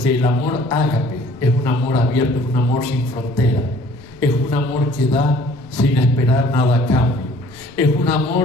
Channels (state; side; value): noise; left; rumble, 24 dB below the sound